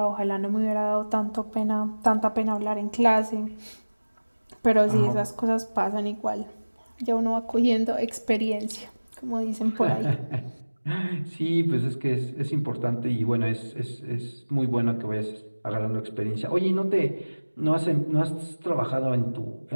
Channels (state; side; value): inverted; both; correlation -1.00